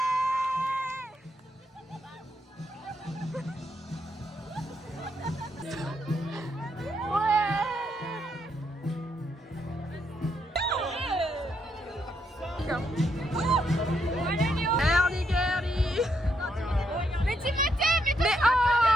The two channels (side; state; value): both; normal; correlation 0.78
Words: Mais Timothée, mais